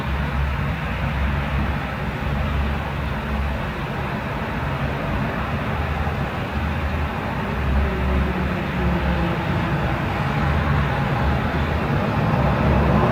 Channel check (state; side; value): identical; both; correlation 1.00